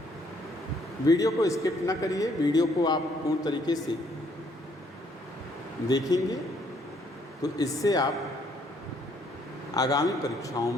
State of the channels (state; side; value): normal; both; correlation 0.67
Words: वीडियो को स्किप ना करिए, वीडियो को आप पूर्ण तरीके से देखेंगे तो इससे आप आगामी परीक्षाओं